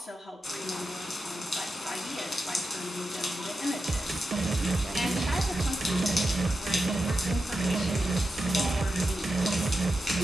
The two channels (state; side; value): normal; both; correlation 0.89